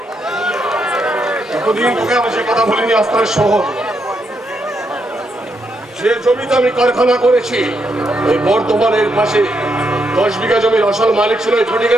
এতদিন তোকে আমি সে কথা বলিনি। আস্তার শহর, যে জমিতে আমি কারখানা করেছি, ওই বর্ধমানের পাশে 10 বিঘা জমির আসল মালিক ছিল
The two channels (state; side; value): normal; both; correlation 0.79